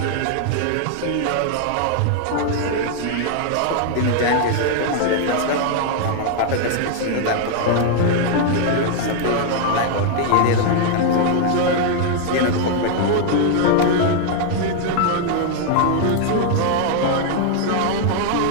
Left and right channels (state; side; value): different; both; correlation 0.00